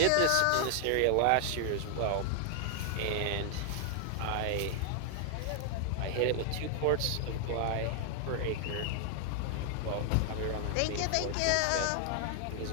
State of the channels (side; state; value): both; different; correlation 0.00